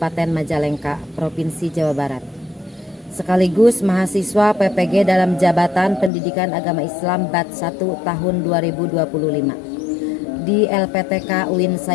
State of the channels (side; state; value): right; drops out; at 6.1 s